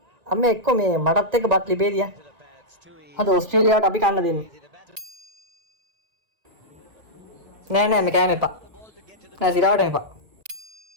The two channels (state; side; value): late; left; 1.9 ms